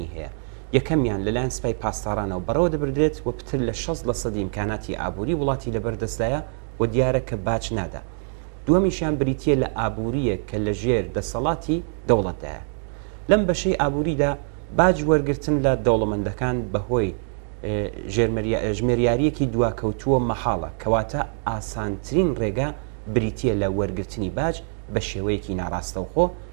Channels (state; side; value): silent; left; 57 dB below the other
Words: هەیە. یەکەمیان لەلایەن سوپای پاسدارانەوە بەڕەوە دەبردرێت و پتر لە 60% ئیمکاناتی ئابووری وڵاتی لەبەردەستدایە و دیارە کە باج نادا. دووەمیشیان بریتیە لە ئابووریە کە لە ژێر دەسەڵاتی دەوڵەتدایە. لەم بەشەی ئابووریدا باج وەرگرتن لە دەوڵەمەندەکان بەهۆی ژمێریارەکی دواکەوتووە مەحاڵە، کەواتە ئاسانترین ڕێگا بریتیە لە وەرگرتنی باج بە شێوەیەکی ناڕاستەوخۆ